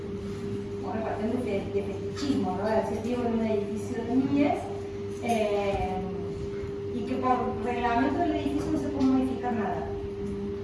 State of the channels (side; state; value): both; identical; correlation 1.00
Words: Bueno, partiendo de fetichismo, ¿no? De decir, vivo en un edificio de Mies, y que por reglamento del edificio no se puede modificar nada.